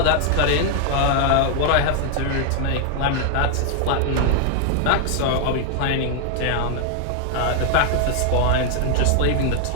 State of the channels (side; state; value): both; different; correlation 0.00